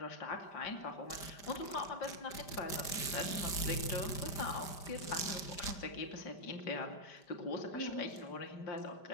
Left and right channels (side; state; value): right; late; 5.1 ms